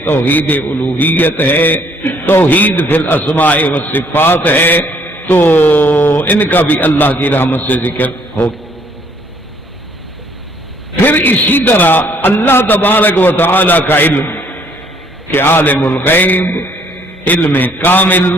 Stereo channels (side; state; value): both; normal; correlation 0.64